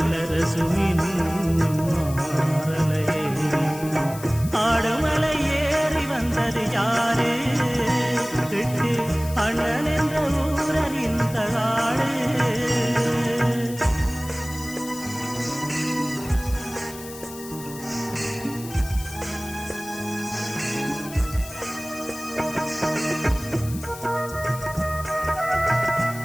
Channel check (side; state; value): left; noise; hiss, 14 dB below the sound